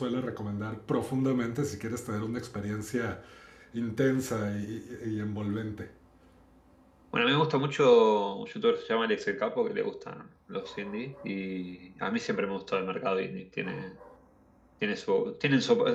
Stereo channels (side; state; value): both; identical; correlation 1.00